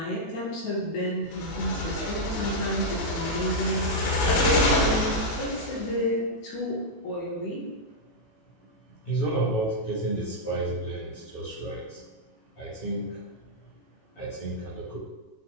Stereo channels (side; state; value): right; late; 18 ms